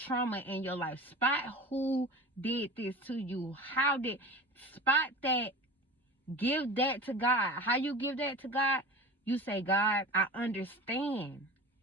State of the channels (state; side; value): normal; both; correlation 0.34